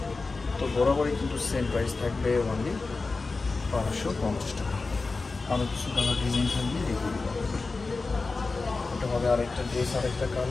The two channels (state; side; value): quieter; right; 3.9 dB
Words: তো বরাবরই কিন্তু সেম প্রাইস থাকবে অনলি 1250 টাকা। আরও কিছু কালার ডিজাইন থাকবে, দেখে দেবো। এটা হবে আরেকটা ড্রেস, আরেকটা